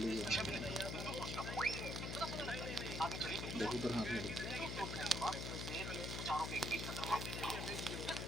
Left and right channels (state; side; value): noise; left; hum, 3 dB below the sound